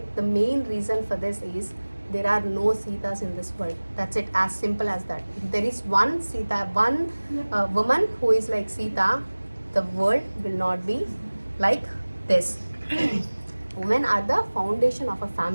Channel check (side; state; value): both; inverted; correlation -1.00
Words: The main reason for this is there are no Sitas in this world. That's it, as simple as that. If there is one Sita, one woman who is like Sita, the world will not be like this. Women are the foundation of a